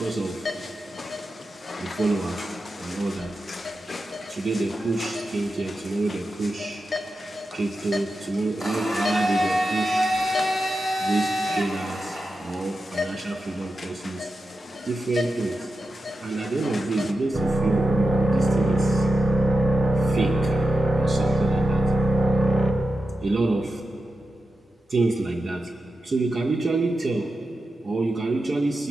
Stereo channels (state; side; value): normal; both; correlation 0.90